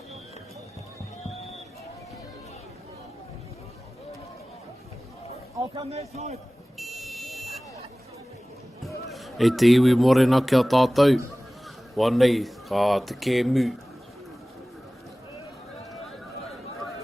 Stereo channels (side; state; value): both; normal; correlation 0.98